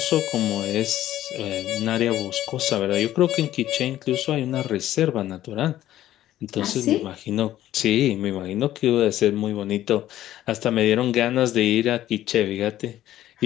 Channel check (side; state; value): right; quieter; 13.3 dB